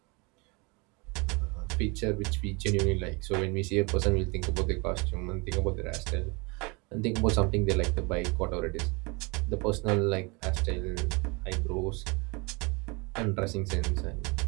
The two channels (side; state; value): left; quieter; 28.6 dB